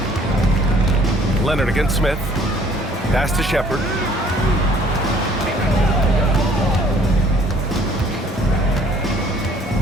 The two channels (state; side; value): normal; both; correlation 0.58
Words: Leonard against Smith. Pass to Shepard.